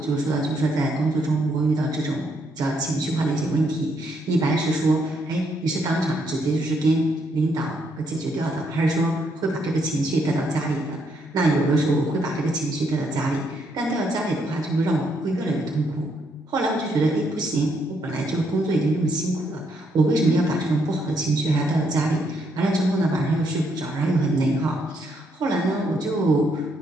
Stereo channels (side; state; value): both; normal; correlation 0.74